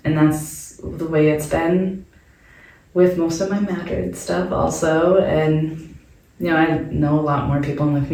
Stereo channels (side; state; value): both; identical; correlation 1.00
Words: And that's the way it's been with most of my Madrid stuff also. And, I know a lot more people in the